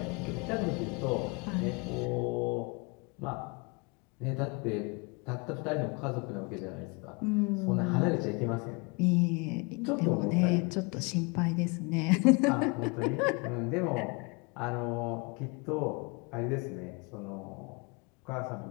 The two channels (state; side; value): quieter; right; 30.2 dB